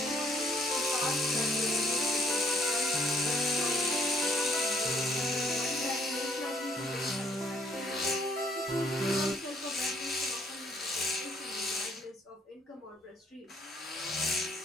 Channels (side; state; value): both; normal; correlation 0.63